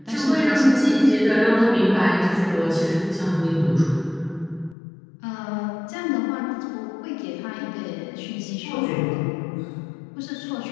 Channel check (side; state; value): right; drops out; at 4.8 s